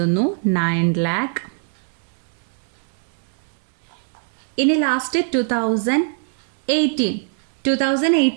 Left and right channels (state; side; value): silent; left; digital silence